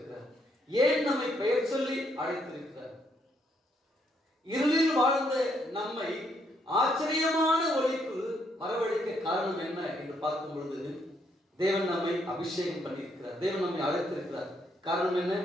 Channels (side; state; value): both; normal; correlation 0.73